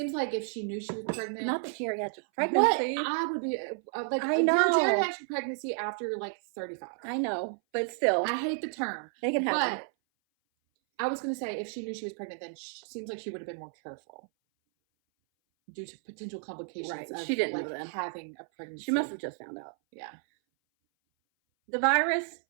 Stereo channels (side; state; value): left; silent; 57 dB below the other